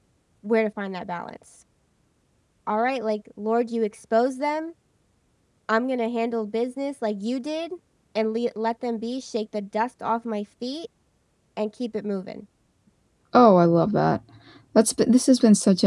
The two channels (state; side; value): identical; both; correlation 1.00